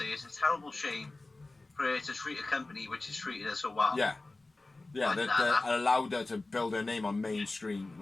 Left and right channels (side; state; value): right; quieter; 3.1 dB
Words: is it's a terrible shame for her to treat a company which has treated her so well. Yeah. Yeah, Like that allowed her to build her name on mainstream.